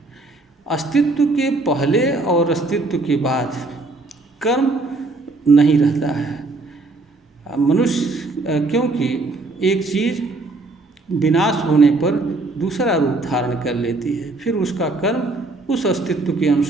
अस्तित्व के पहले और अस्तित्व के बाद कर्म नहीं रहता है। मनुष्य क्योंकि एक चीज़ विनाश होने पर दूसरा रूप धारण कर लेती है, फिर उसका कर्म उस अस्तित्व के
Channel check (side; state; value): left; quieter; 3.2 dB